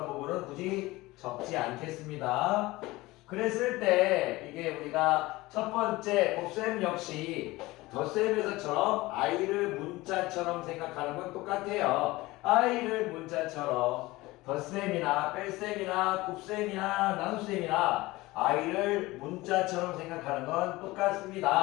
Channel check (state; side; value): quieter; right; 20.0 dB